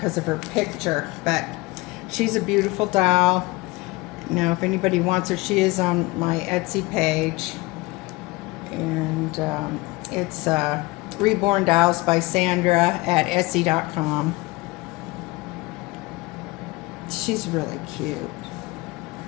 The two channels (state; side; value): quieter; right; 22.5 dB